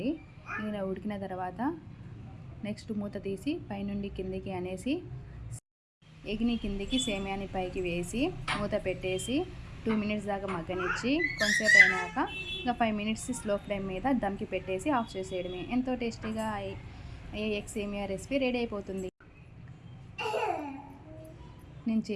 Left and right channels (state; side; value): identical; both; correlation 1.00